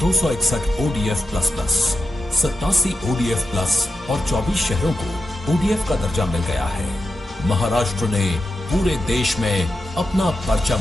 261 ODF plus plus, 87 ODF plus और 24 शहरों को ODF का दर्जा मिल गया है। महाराष्ट्र ने पूरे देश में अपना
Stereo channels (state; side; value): normal; both; correlation 0.90